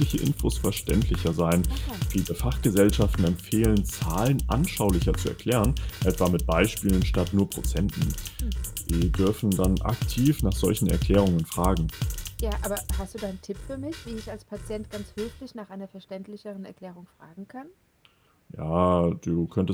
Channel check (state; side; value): identical; both; correlation 1.00